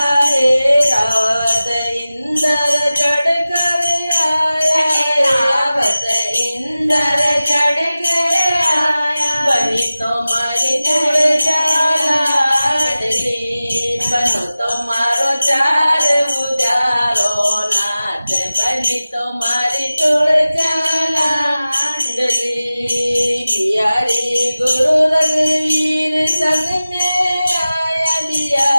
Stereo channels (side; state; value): both; inverted; correlation -0.96